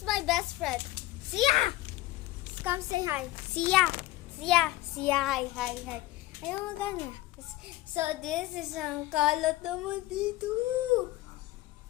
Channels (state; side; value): quieter; right; 17.0 dB